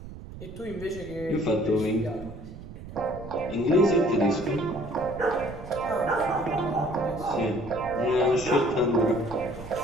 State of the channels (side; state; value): right; noise; rumble, 13 dB below the sound